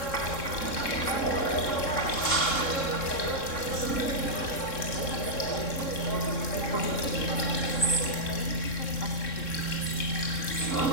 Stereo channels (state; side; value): late; right; 3.7 ms